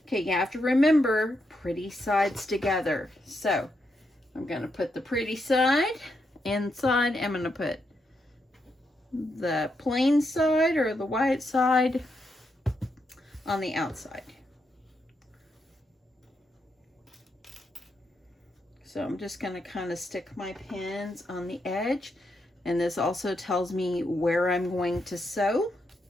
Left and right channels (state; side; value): normal; both; correlation 0.81